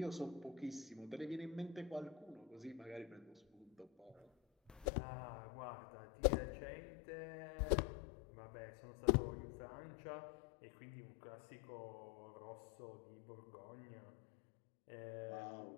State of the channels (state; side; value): drops out; right; at 4.9 s